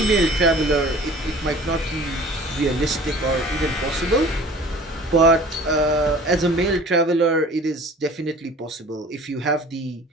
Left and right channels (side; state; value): both; normal; correlation 0.46